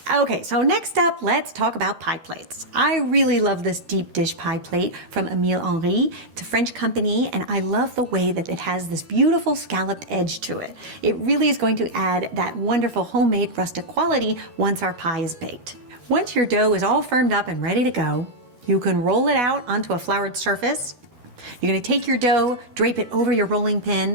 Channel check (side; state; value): left; late; 13 ms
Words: Okay, so next up, let's talk about pie plates. I really love this deep dish pie plate from Emile Henry. It's a French company, and I love the way that it has this beautiful scalloped edge to it. It really is going to add that wonderful homemade rustic quality once our pie is baked. Once your dough is all firmed up and ready to go, you can roll it out onto a floured surface. You're going to take your dough, drape it over your rolling